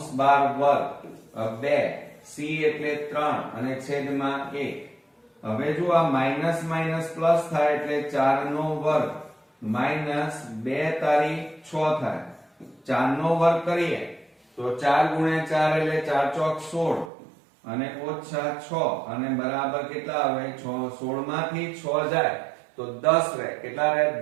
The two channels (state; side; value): drops out; left; at 17.1 s